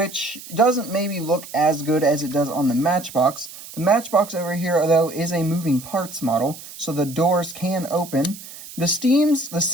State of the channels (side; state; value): right; noise; hiss, 15 dB below the sound